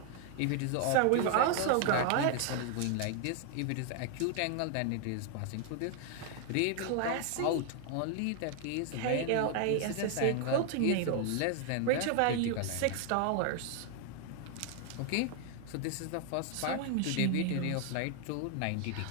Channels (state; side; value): different; both; correlation 0.00